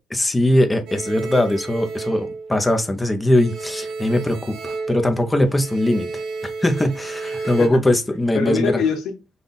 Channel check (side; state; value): both; normal; correlation 0.90